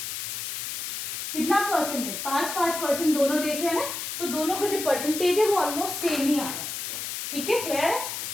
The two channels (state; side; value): noise; left; hiss, 5 dB below the sound